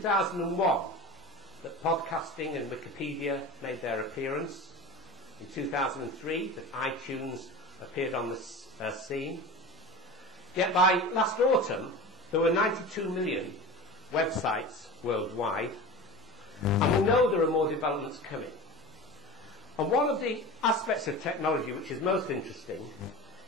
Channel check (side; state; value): both; normal; correlation 0.32